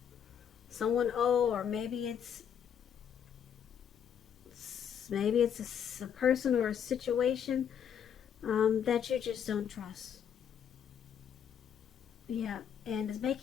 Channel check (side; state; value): right; quieter; 8.4 dB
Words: someone old, or maybe it's a person or a situation that you just don't trust. Yeah, and it's